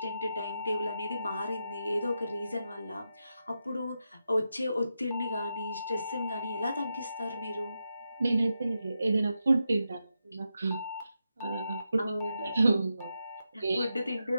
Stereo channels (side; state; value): both; inverted; correlation -0.87